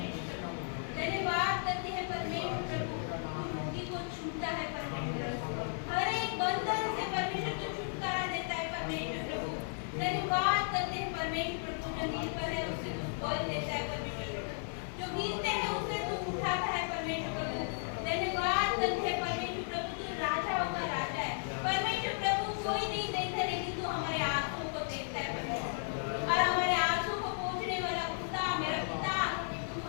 कोई नहीं देखता लेकिन तू हमारे आंसू को देखता है परमेश्वर, और हमारे आंसू को पोंछने वाला खुदा मेरा पिता तू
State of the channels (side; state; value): right; silent; digital silence